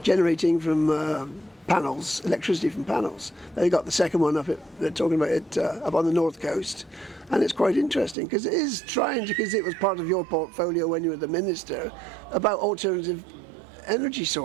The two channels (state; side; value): drops out; left; at 8.2 s